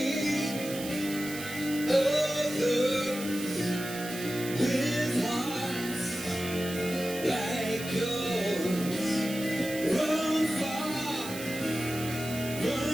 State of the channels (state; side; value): noise; right; hiss, 10 dB below the sound